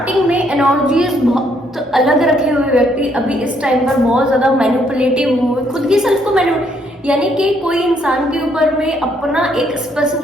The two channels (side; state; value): both; normal; correlation 0.70